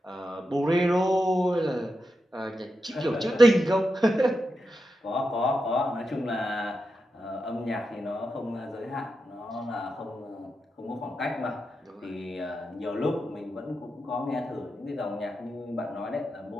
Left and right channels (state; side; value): normal; both; correlation 0.87